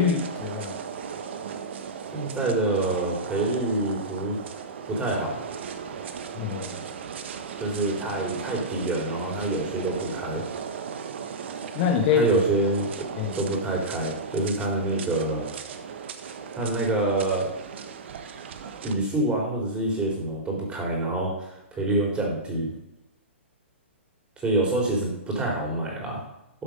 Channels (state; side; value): normal; both; correlation -0.14